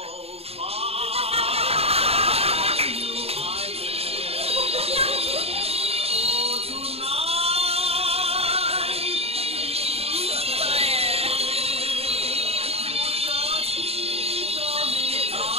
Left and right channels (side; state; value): left; late; 0.29 ms